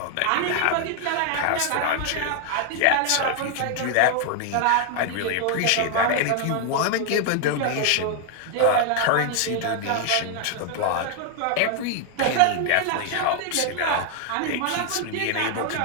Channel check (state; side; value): different; both; correlation 0.00